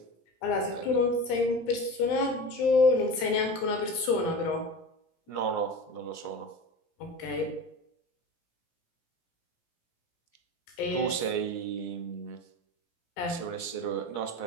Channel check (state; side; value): late; right; 17 ms